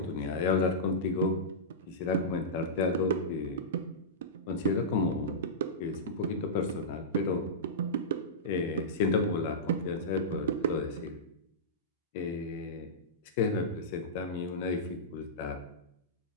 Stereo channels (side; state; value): both; normal; correlation -0.15